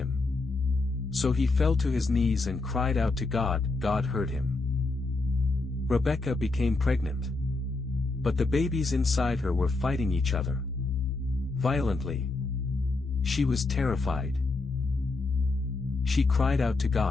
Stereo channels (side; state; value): right; quieter; 3.4 dB